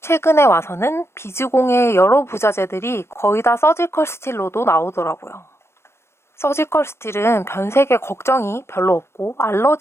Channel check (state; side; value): late; right; 0.12 ms